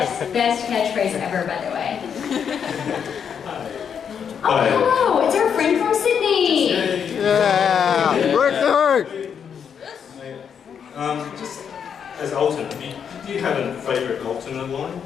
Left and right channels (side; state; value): right; quieter; 7.5 dB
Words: catchphrase ever, by the way. Oh, hello! It's our friend from Sydney. Yeah! Work! Just as alternate, do you have a favourite alternate line